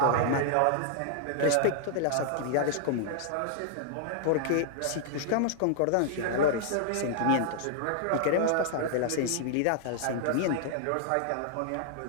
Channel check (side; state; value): both; different; correlation -0.01